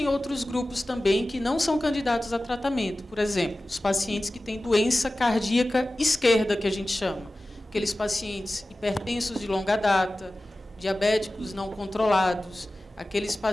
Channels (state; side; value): normal; both; correlation 0.96